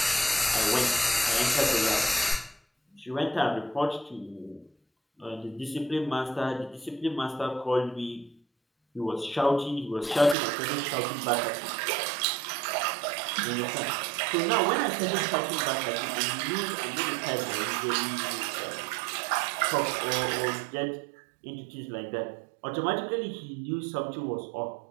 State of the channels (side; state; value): left; drops out; at 10.4 s